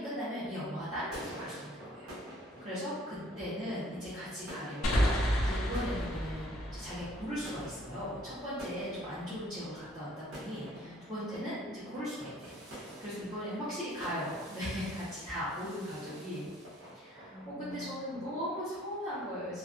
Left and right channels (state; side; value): normal; both; correlation 0.59